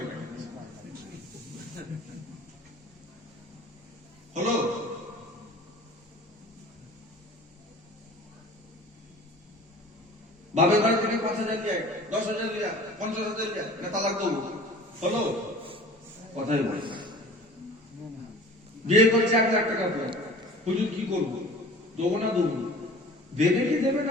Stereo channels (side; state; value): both; normal; correlation 0.44